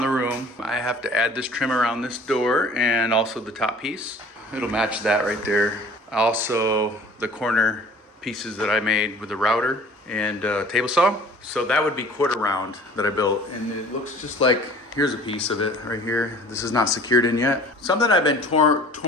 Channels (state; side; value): normal; both; correlation 0.48